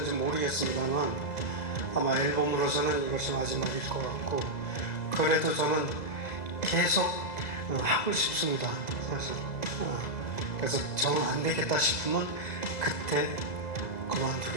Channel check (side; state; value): right; late; 2.0 ms